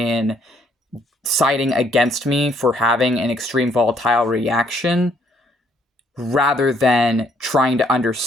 siding against me for having an extreme volatile reaction rather than trying to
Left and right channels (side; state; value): both; normal; correlation 0.67